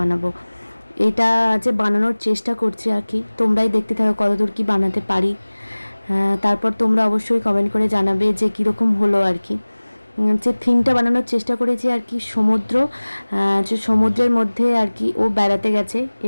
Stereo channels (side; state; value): both; inverted; correlation -1.00